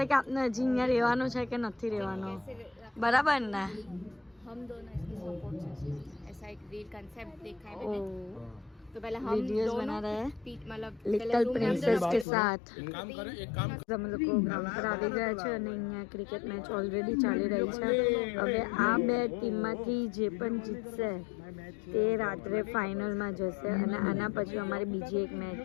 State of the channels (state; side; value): drops out; right; at 12.2 s